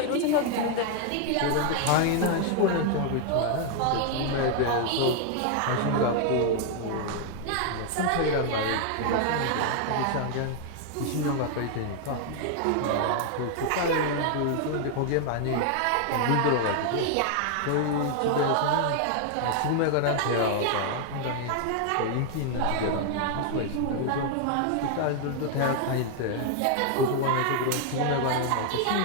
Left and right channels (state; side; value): different; both; correlation 0.00